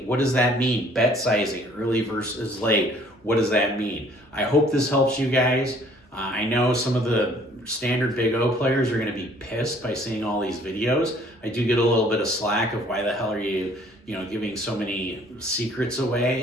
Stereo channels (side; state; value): both; normal; correlation 0.58